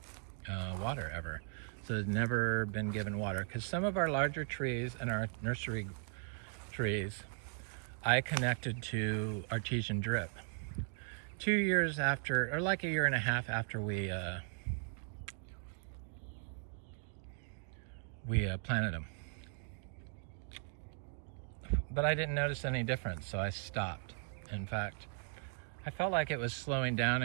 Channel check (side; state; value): left; silent; 52 dB below the other